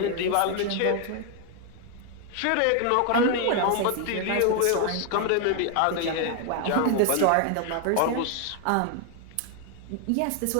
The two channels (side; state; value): both; different; correlation 0.00